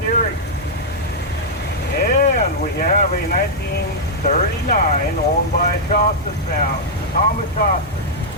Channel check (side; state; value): both; normal; correlation -0.07